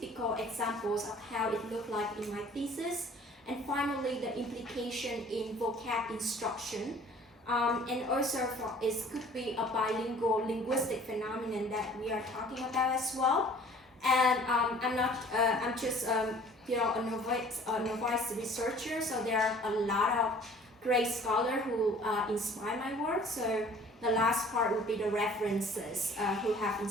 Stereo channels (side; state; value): both; normal; correlation 0.51